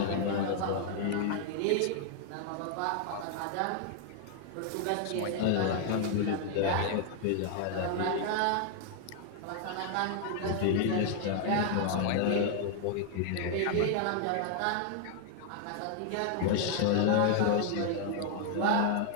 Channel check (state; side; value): different; both; correlation 0.00